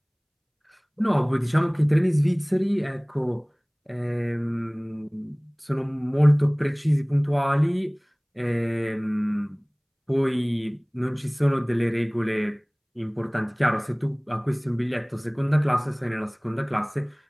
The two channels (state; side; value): identical; both; correlation 1.00